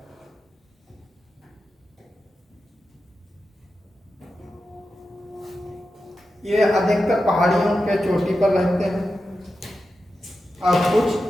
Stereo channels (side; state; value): both; normal; correlation 0.91